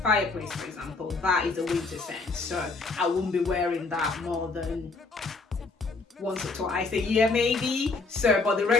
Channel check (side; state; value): right; quieter; 3.9 dB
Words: for example, that is a winter scent, so I wouldn't be wearing that more than once or twice a year maybe. So, but the